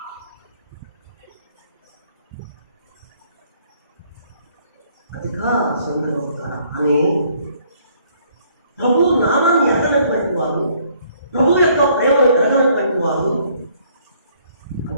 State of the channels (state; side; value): inverted; both; correlation -0.64